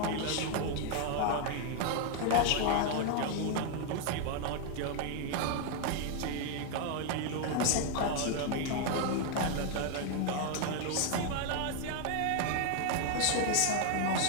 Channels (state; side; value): different; both; correlation 0.00